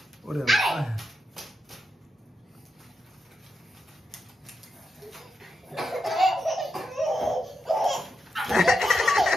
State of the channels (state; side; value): normal; both; correlation 0.86